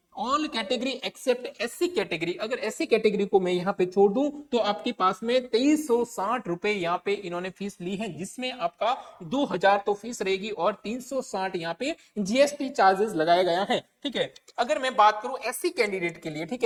All category except SC category, अगर एससी कैटेगरी को मैं यहाँ पे छोड़ दूं तो आपके पास में 2360 रुपए यहाँ पे इन्होंने फीस ली है, जिसमें आपका 2000 तो फीस रहेगी और 360 यहाँ पे जीएसटी चार्जेस लगाया गया है। ठीक है, अगर मैं बात करूं एससी कैंडिडेट के लिए, ठीक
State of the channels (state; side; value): identical; both; correlation 1.00